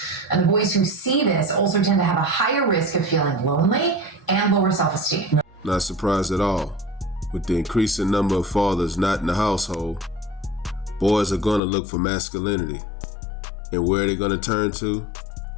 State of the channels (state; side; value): drops out; right; at 11.6 s